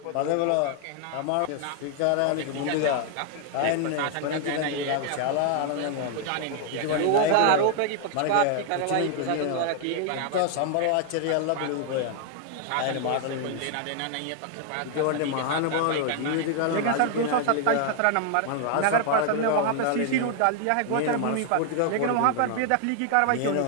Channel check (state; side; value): different; both; correlation 0.00